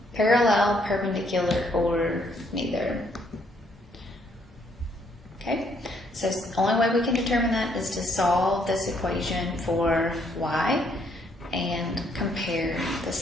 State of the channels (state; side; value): normal; both; correlation 0.69